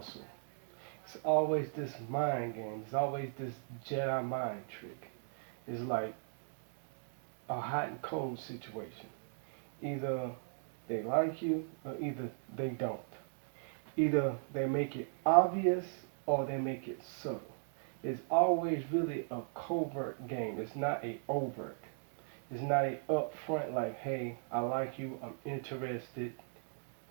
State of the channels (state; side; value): silent; left; digital silence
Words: It's always this mind game. It's always this Jedi mind trick. It's like a hot and cold situation. Either they like you or either they don't. Either they make it obvious or they make it subtle. It's always really a covert game. It's not a overt. It's not a upfront like, hey, I like you, I'm interested.